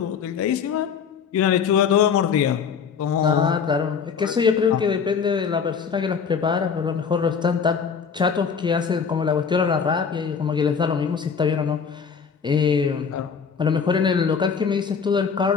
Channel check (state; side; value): quieter; right; 6.4 dB